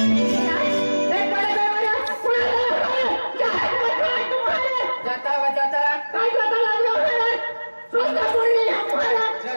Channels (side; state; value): both; inverted; correlation -1.00